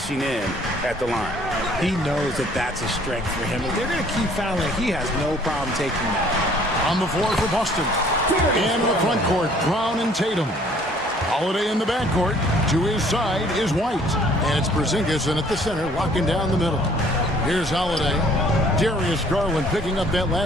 in at the line. He knows that that's a strength for him. If they're going to keep fouling, he has no problem taking that. On the floor for Boston. And in the front court, Brown and Tatum. Holiday in the backcourt. To his side is White. And it's Porzingis in at the center, locking down the middle. Here's Holiday. Darius Garland picking up that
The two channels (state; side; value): normal; both; correlation 0.58